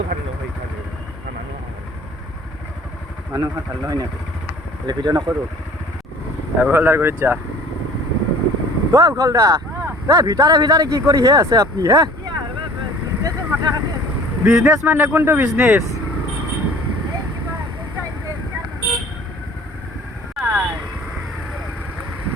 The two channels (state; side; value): normal; both; correlation 0.49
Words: ভাল নহয় মানুহ ভাল নহয় নাকি ভিডিঅ' নকৰোঁ উখলদাৰ কৰি যা উখলদা ভিতৰে কি কৰি হে আছে আপনি হে বিজনেস মানে কোনটো বিজনেস